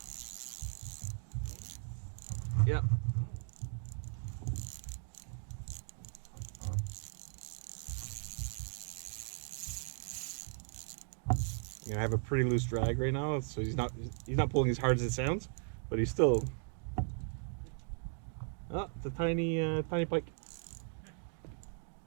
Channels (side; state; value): left; silent; 53 dB below the other